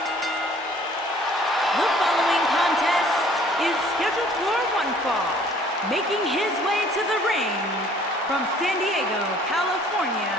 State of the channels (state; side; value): normal; both; correlation 0.56